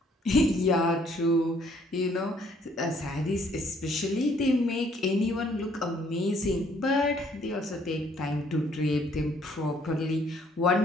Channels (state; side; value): normal; both; correlation 0.64